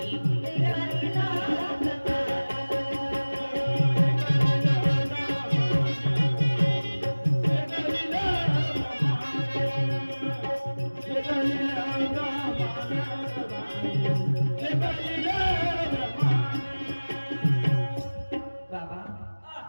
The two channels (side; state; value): both; inverted; correlation -1.00